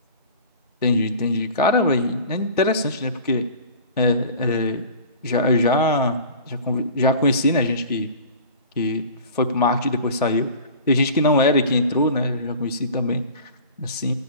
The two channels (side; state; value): both; inverted; correlation -0.41